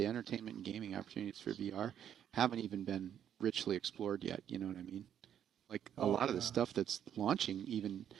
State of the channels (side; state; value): left; quieter; 9.6 dB